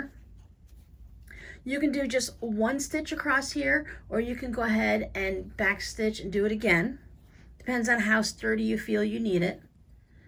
You can do just one stitch across here, or you can go ahead and back stitch and do it again. Depends on how sturdy you feel you need it.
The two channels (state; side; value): identical; both; correlation 1.00